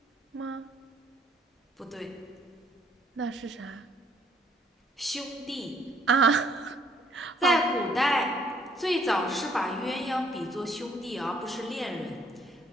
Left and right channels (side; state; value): both; normal; correlation 0.65